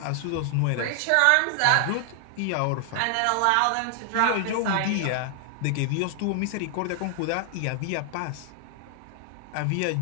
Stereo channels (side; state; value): both; different; correlation 0.00